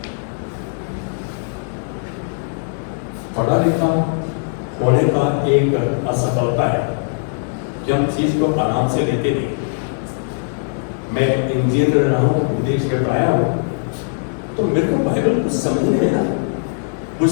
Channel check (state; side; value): silent; right; digital silence